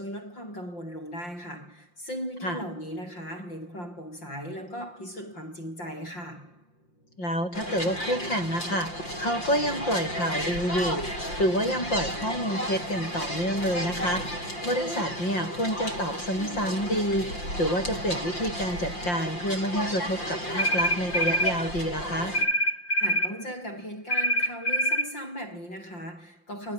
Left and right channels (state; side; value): late; right; 5.7 ms